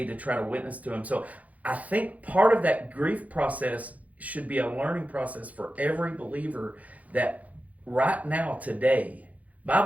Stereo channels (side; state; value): left; late; 0.072 ms